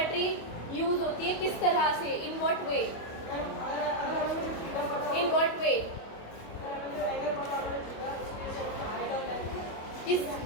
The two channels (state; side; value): late; right; 25 ms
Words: यूज़ होती है। किस तरह से, in what way? In what way? किस,